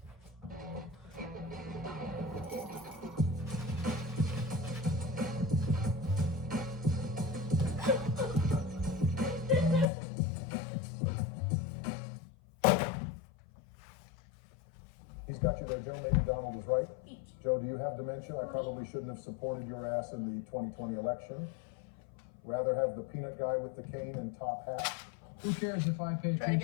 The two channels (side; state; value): right; drops out; at 9.9 s